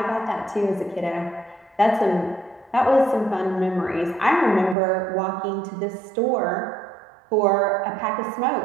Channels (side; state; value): left; drops out; at 4.8 s